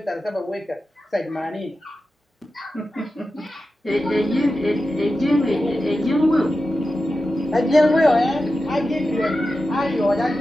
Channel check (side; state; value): both; normal; correlation 0.92